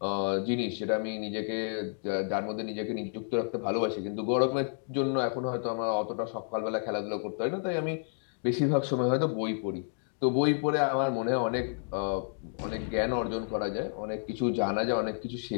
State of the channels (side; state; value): right; silent; digital silence